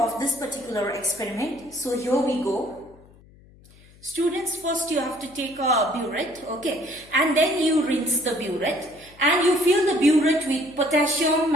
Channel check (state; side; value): noise; left; hum, 26 dB below the sound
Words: this particular experiment. So here we go. Students, first you have to take a burette, okay, and then you rinse the burette and you fill the burette with potassium